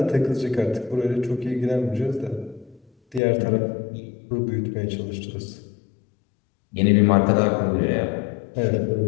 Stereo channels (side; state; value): right; drops out; at 3.2 s